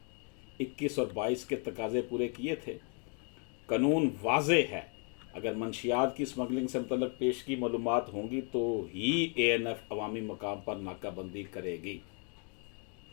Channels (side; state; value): right; quieter; 39.7 dB